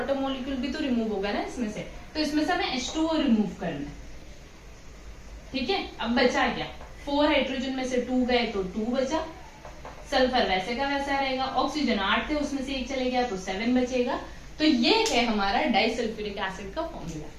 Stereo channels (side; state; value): both; identical; correlation 1.00